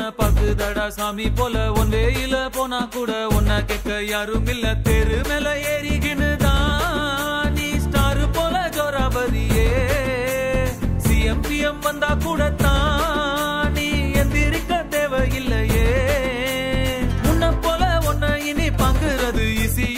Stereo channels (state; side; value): identical; both; correlation 1.00